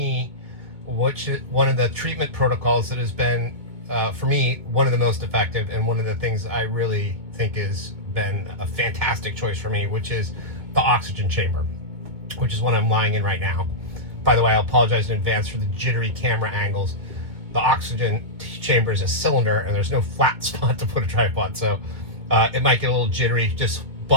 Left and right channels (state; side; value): late; left; 2.2 ms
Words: one of the treatment protocols that has been, for me, one of the most effective, and one of the things I really think has been a fantastic choice for me, which is the oxygen chamber, which is what I'm lying in right now. By the way, I apologize in advance for the jittery camera angles. The oxygen chamber is a cylinder, and there's no flat spot to put a tripod, so it might get a little jittery. Just